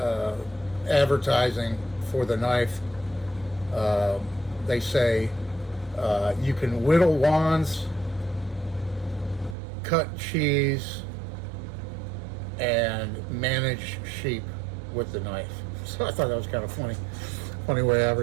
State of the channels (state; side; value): drops out; left; at 9.6 s